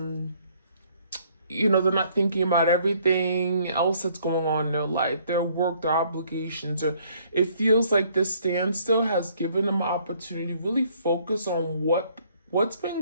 they're not thinking about everything else that's going on in their life, their work, their obligations, or it feels like this standstill has given them an opportunity to really focus on what's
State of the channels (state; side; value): inverted; both; correlation -0.63